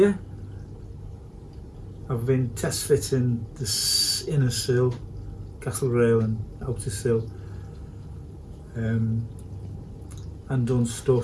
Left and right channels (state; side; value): identical; both; correlation 1.00